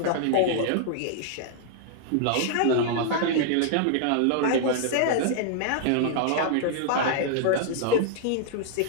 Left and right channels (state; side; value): different; both; correlation -0.01